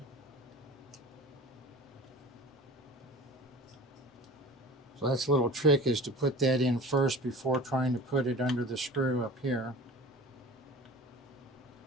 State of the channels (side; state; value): both; normal; correlation 0.40